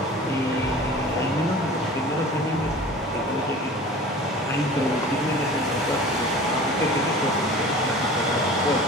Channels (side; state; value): both; normal; correlation 0.41